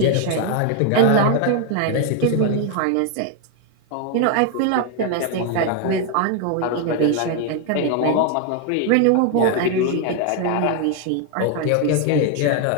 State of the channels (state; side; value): different; both; correlation 0.01